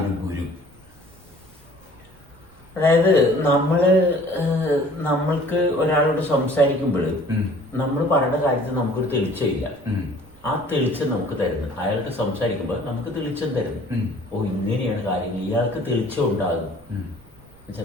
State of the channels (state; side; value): noise; right; rumble, 27 dB below the sound